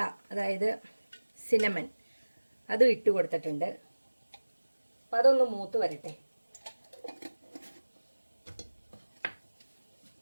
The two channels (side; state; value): both; inverted; correlation -1.00